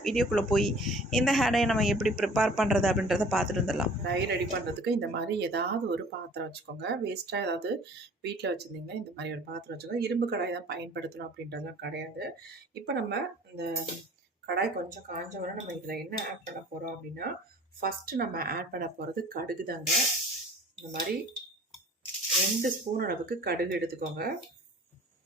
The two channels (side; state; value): both; normal; correlation 0.48